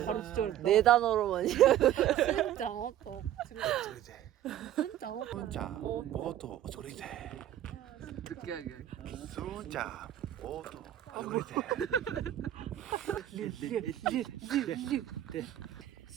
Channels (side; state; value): left; quieter; 12.0 dB